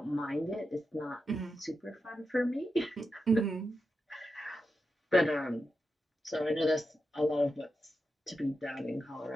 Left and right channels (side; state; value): both; normal; correlation 0.88